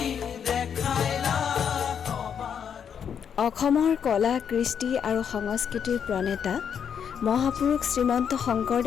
দেখাইলা সবাৰ। অসমৰ কলা কৃষ্টি আৰু সংস্কৃতিৰ প্ৰণেতা মহাপুৰুষ শ্ৰীমন্ত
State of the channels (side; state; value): right; quieter; 7.8 dB